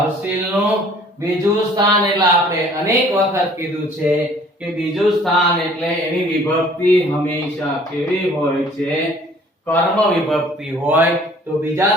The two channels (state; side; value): normal; both; correlation 0.54